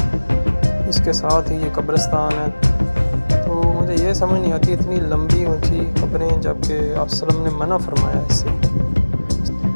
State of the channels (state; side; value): inverted; both; correlation -1.00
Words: इसके साथ ही ये कब्रिस्तान है। तो मुझे ये समझ नहीं आती इतनी लंबी ऊंची कब्रें, जबकि आप सल्लम ने मना फरमाया इससे।